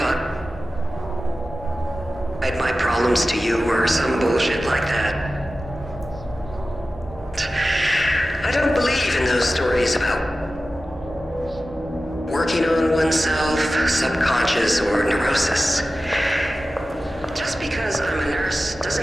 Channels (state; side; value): normal; both; correlation 0.95